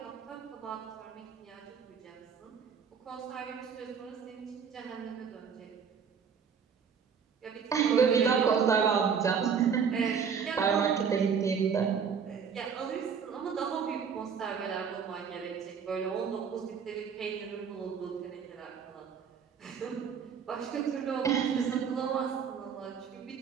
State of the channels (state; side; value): quieter; left; 6.7 dB